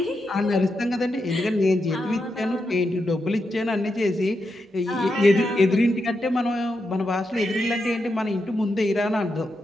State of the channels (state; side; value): normal; both; correlation 0.85